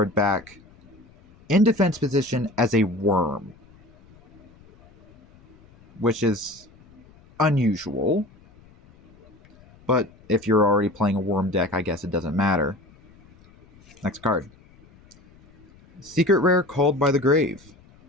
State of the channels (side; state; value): left; noise; rumble, 27 dB below the sound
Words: back in defense position as a worm, which is unusual. But if you're already playing a worm deck, I guess it doesn't matter. Next card. Secret Rare Called by the Grave.